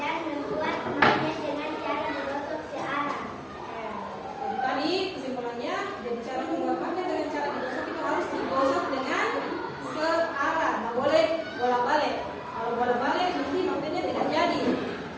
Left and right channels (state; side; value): identical; both; correlation 1.00